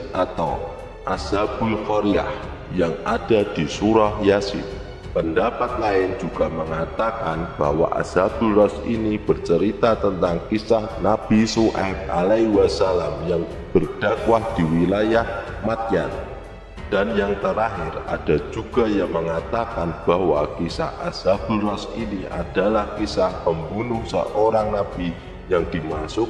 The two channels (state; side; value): identical; both; correlation 1.00